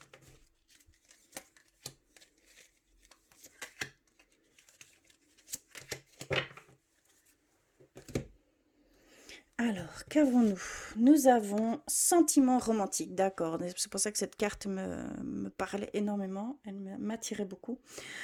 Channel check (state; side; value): identical; both; correlation 1.00